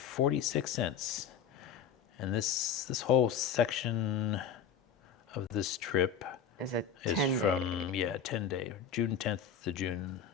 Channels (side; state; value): right; quieter; 7.1 dB